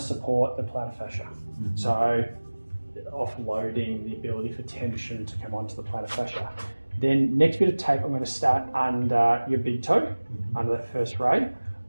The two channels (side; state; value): both; inverted; correlation -1.00